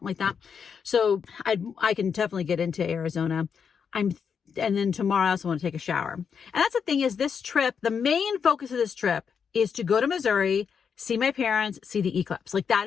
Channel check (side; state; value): right; quieter; 6.7 dB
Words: like that. So I can definitely get into Arizona. And then tomorrow I also want to take a shower. And that's the thing, is this trip, the main focus of this trip is to go to Missouri, see my parents, see the eclipse. Like,